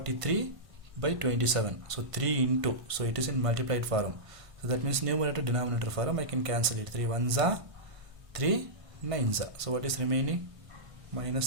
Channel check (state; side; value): late; left; 1.5 ms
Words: by 27. So 3 into, so it is in multiplied form. So that means numerator denominator form. I can cancel it. 3 1s are 3 9s are. So what is remaining? Minus